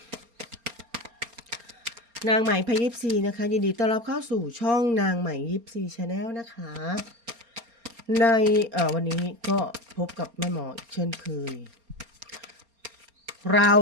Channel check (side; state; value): left; late; 4.3 ms